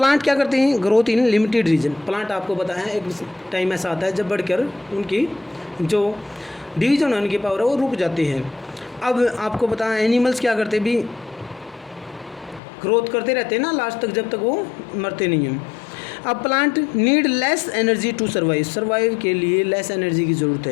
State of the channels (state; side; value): drops out; right; at 12.6 s